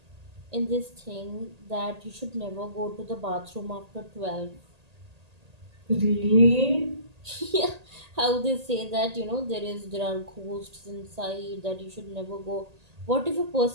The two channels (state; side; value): late; left; 1.8 ms